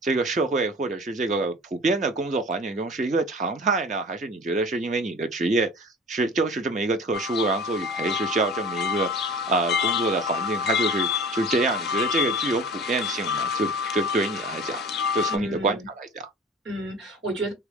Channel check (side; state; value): both; normal; correlation 0.40